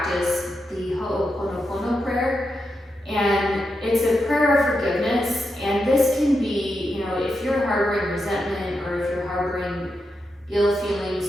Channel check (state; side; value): normal; both; correlation 0.86